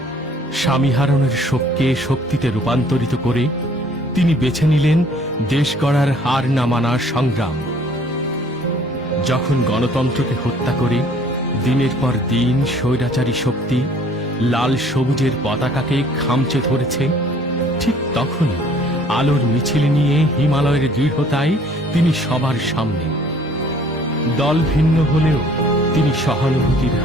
স্বামী হারানোর শোককে শক্তিতে রূপান্তরিত করে তিনি বেছে নিলেন দেশ গড়ার হার না মানার সংগ্রাম। যখন গণতন্ত্রকে হত্যা করে দিনের পর দিন স্বৈরাচারী শক্তি লাল সবুজের পতাকাকে খামচে ধরেছে, ঠিক তখনই আলোর মিছিল নিয়ে হিমালয়ের দৃঢ়তায় তিনি সবার সামনে। দল ভিন্ন হলেও তিনি সহানুভূতির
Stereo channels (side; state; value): both; normal; correlation 0.57